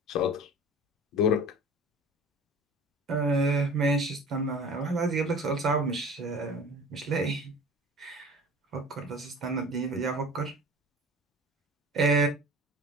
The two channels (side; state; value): both; normal; correlation 0.41